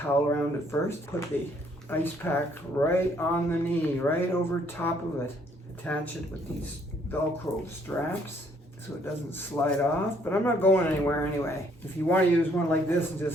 around it first. Put the ice pack right on the knee, right over top of it. Attach it with these Velcro straps so it doesn't slide off, but I'm not going anywhere anyway. If you want to use one like this and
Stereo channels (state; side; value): normal; both; correlation 0.65